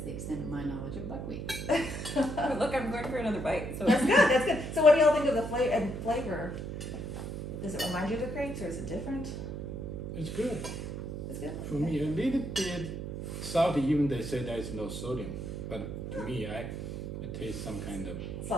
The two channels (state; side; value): noise; right; hum, 6 dB below the sound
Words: extent of my knowledge of buckwheat. Look, I'm going for another bite. So That's good. That's good. So what do y'all think of the flavor? Does it remind you of the crepes, or is it different? It's good. It's good. For me, a little bit salty, even they say there is no sodium. But to me, I taste some kind of